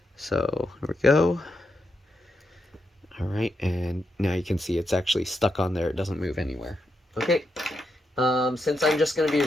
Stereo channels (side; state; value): both; normal; correlation 0.83